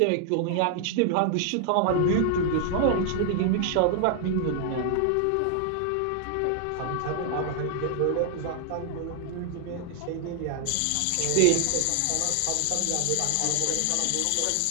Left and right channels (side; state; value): both; different; correlation 0.00